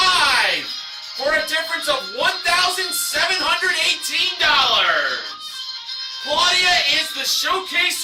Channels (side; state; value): both; identical; correlation 1.00